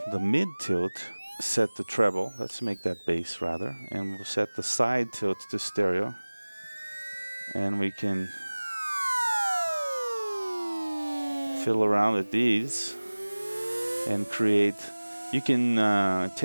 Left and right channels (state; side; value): inverted; both; correlation -1.00